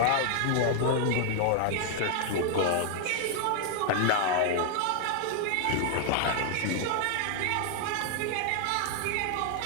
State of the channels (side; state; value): both; different; correlation 0.00